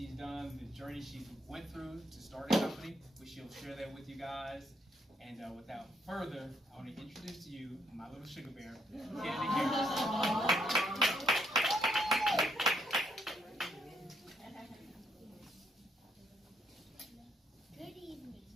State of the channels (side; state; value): both; normal; correlation 0.73